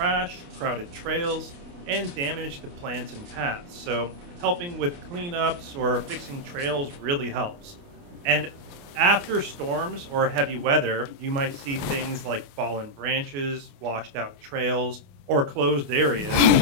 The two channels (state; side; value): late; left; 29 ms